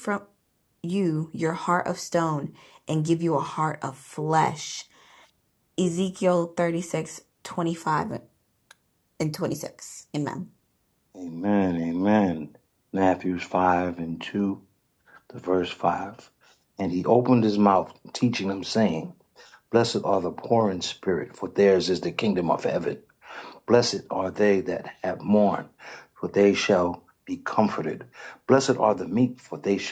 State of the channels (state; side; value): identical; both; correlation 1.00